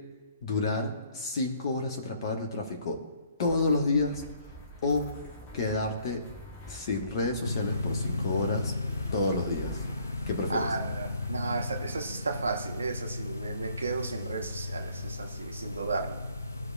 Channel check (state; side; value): inverted; both; correlation -0.63